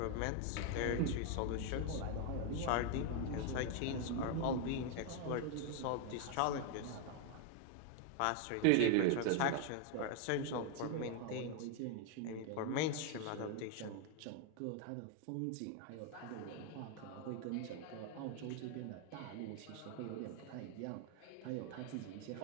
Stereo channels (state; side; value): different; both; correlation 0.01